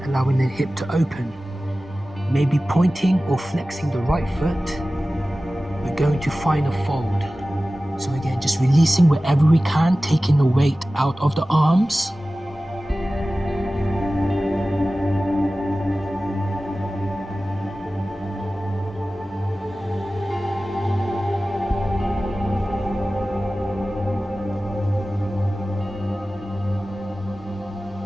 allowing the hip to open. Maybe pointing or flexing the right foot, we're going to find a fold. So again, just releasing wherever we can, taking the weight out of the arms.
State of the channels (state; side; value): normal; both; correlation 0.96